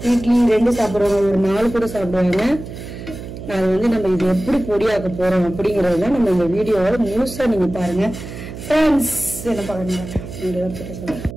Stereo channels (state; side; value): noise; right; hum, 11 dB below the sound